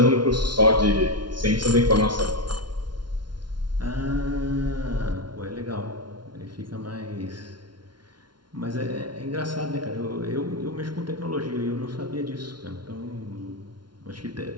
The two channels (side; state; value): left; late; 0.71 ms